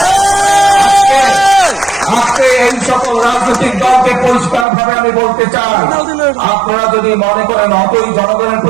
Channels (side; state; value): left; drops out; at 4.7 s